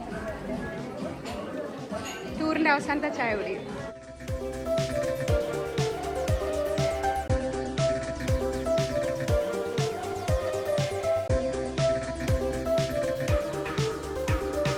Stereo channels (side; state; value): both; identical; correlation 1.00